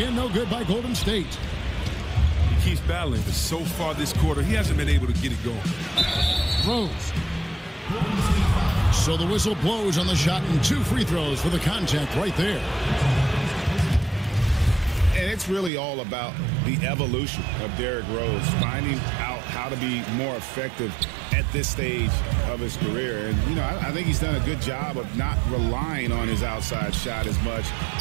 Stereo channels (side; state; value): left; drops out; at 15.7 s